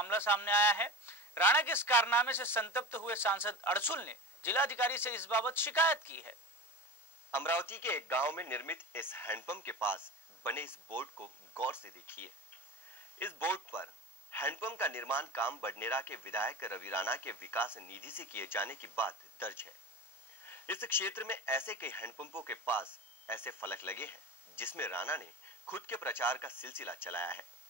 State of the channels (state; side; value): normal; both; correlation 0.29